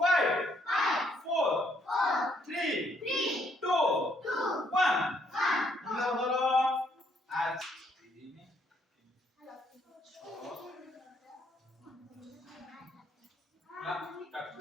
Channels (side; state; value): both; normal; correlation 0.70